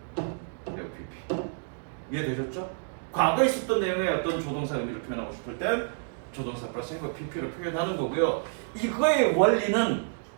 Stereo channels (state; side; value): silent; left; digital silence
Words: FPP. 이해되셨죠? 과거에 있었던 내용의 어떤 조동사 의미를 표현하고 싶을 땐 조동사 플러스 have pp를 표현하는 거고요. 이거의 원리는